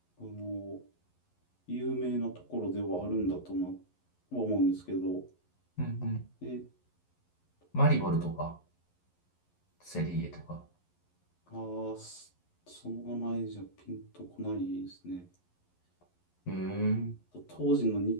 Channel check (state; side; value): late; right; 11 ms